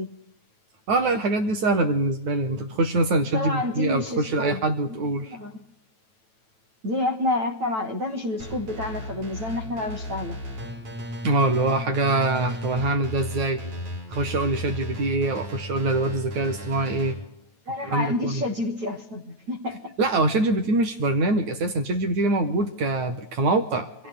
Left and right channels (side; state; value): left; late; 9.1 ms